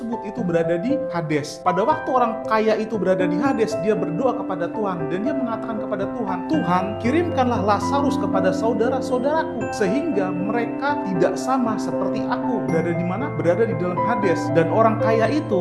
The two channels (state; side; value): identical; both; correlation 1.00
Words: itu berada di Hades. Pada waktu orang kaya itu berada di Hades, dia berdoa kepada Tuhan, dan dia mengatakan kepada Tuhan, Tuhan, kirimkanlah Lazarus kepada saudara-saudaraku, sehingga mereka tidak sama seperti aku. Berada di mana? Berada di dalam Hades. Dan orang kaya